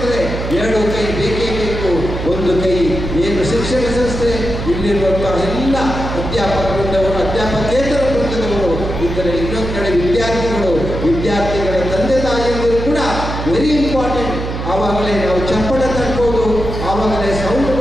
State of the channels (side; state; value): right; noise; hum, 5 dB below the sound